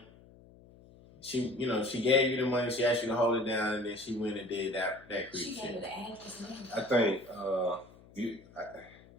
She gave you the money. She asked you to hold it down, and then she went and did that creep shit. She gave her the address. I think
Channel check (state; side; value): noise; left; hum, 23 dB below the sound